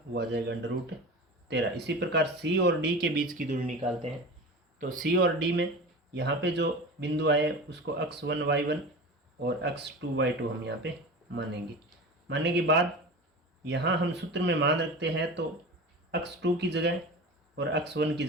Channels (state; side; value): normal; both; correlation 0.31